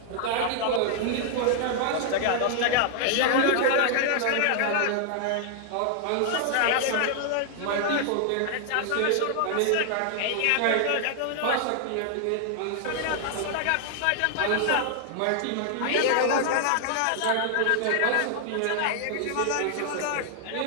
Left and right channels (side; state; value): both; different; correlation 0.00